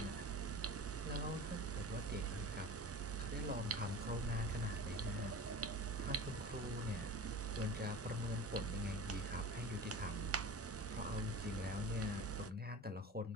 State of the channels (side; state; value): both; normal; correlation 0.35